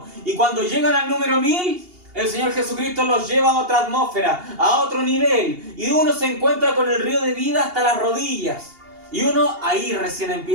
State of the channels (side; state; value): left; late; 2.8 ms